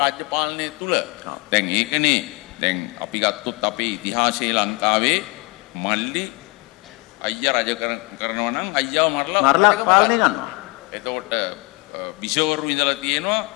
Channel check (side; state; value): right; quieter; 27.1 dB